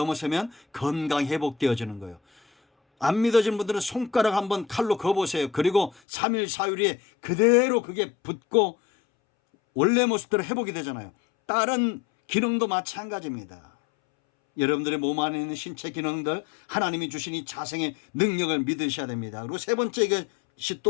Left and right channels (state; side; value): drops out; right; at 6.0 s